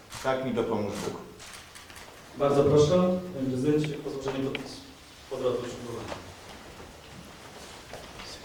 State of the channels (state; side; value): identical; both; correlation 1.00